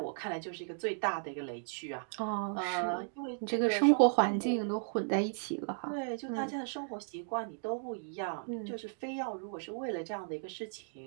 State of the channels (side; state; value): left; silent; digital silence